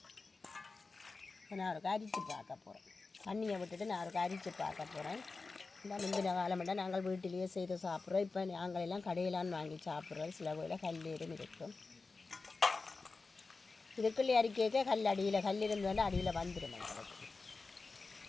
நான் ஒரு அரிச்சு பார்க்க போகிறேன். தண்ணியை விட்டுட்டு நான் ஒரு அரிச்சு பார்க்க போகிறேன். இந்த முந்தின காலமெல்லாம் நாங்கள் வீட்டிலேயே செய்து சாப்பிட்றோம். இப்போ நாங்கள் எல்லாம் கடையிலான்னு வாங்கி சாப்பிட்றோம். சில வேளையில் கல்லீரும் இருக்கும். இதுக்குள்ளே அரிக்க கல் அடியில் கல் இருந்தோன்னா அடியில் வந்துடும் எங்களுக்கு.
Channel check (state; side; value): quieter; right; 4.0 dB